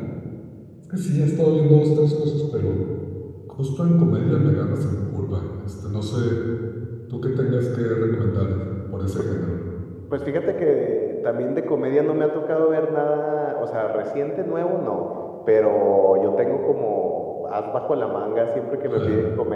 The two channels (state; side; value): identical; both; correlation 1.00